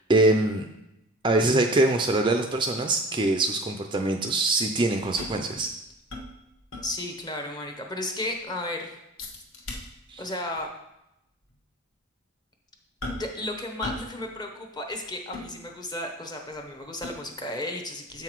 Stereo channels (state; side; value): normal; both; correlation 0.41